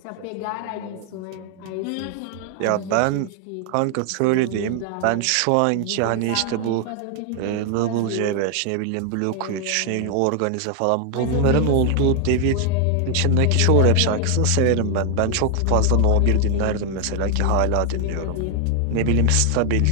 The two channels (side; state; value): both; different; correlation 0.00